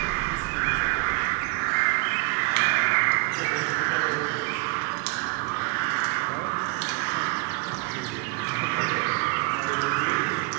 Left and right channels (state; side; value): quieter; left; 26.3 dB